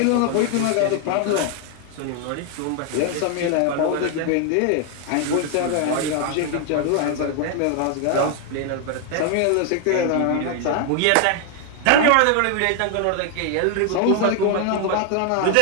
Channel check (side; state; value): both; different; correlation 0.00